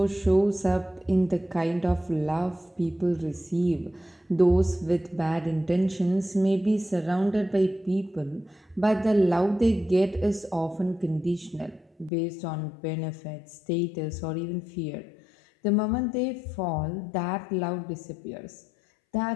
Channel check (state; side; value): drops out; right; at 12.1 s